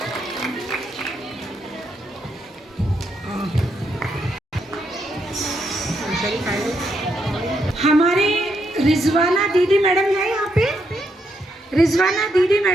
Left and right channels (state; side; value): normal; both; correlation 0.78